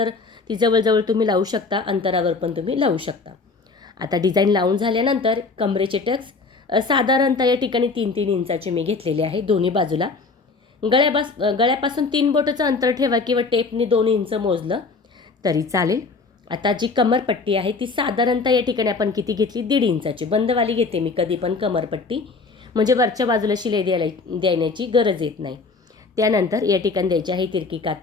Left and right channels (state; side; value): quieter; right; 4.1 dB